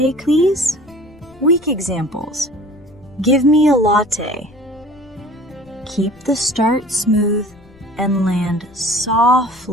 please? Weak examples. Give me a latte. Keep the start smooth and land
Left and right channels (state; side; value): noise; left; rumble, 26 dB below the sound